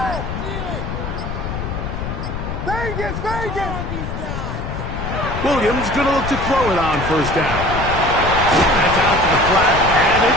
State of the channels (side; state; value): left; noise; rumble, 5 dB below the sound